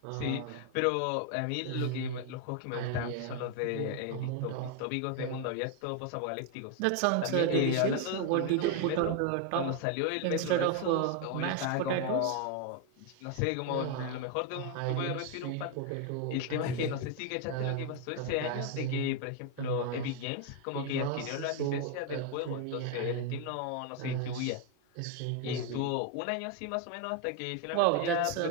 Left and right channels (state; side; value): different; both; correlation 0.01